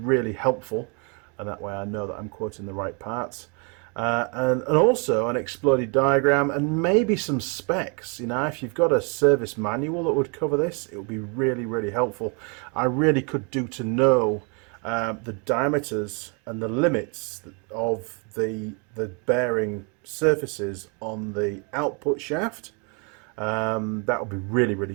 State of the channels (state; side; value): quieter; left; 35.0 dB